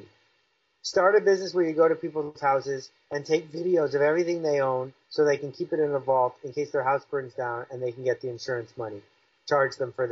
Start a business where you go to people's houses and take videos of everything they own so they can keep it in a vault in case their house burns down and they can get the insurance money. Charge them for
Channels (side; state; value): both; identical; correlation 1.00